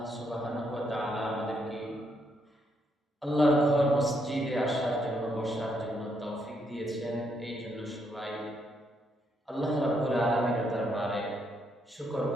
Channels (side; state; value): both; normal; correlation 0.76